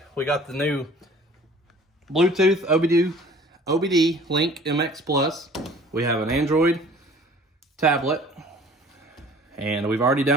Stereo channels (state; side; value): normal; both; correlation 0.49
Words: We got the new Bluetooth OBD Link MX Plus. We have an Android tablet, and we've already